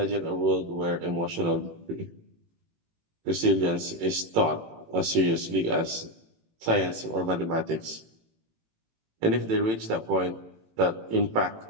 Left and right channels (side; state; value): left; late; 18 ms